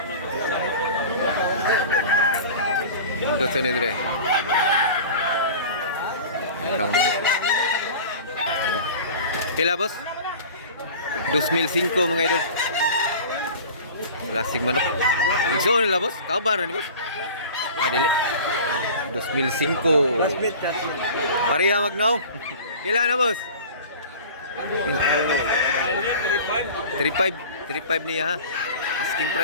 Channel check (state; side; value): inverted; both; correlation -0.38